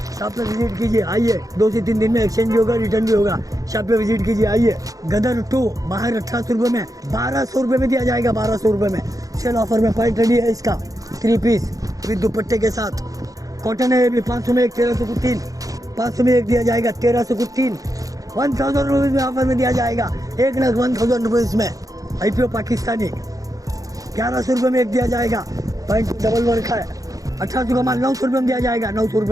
शॉप पे विजिट कीजिए, आइए। 2 से 3 दिन में एक्सचेंज भी होगा, रिटर्न भी होगा। शॉप पे विजिट कीजिए, आइए। गदर 2 बाहर 1800 रुपये में 1200 रुपये में दिया जाएगा। 1200 रुपये में सेल ऑफर में पैंट रेडी है इसका 3 पीस विद दुपट्टे के साथ। कॉटन है ये भी। 500 में एक, 1300 को 3। 500 में एक दिया जाएगा, 1300 को 3। 1000 रुपीज़ में ऑफर में दिया जाएगा। 1,1000 रुपीज़ में IPO पाकिस्तानी। 1100 रुपये में एक दिया जाएगा। पैंट डबल वर्क है। 1800 का माल 900 रुपये में दिया जाएगा। 900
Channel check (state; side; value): late; left; 0.17 ms